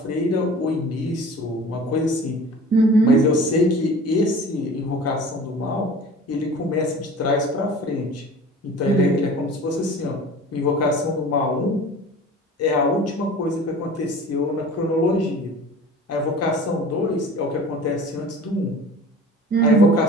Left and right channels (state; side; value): normal; both; correlation 0.41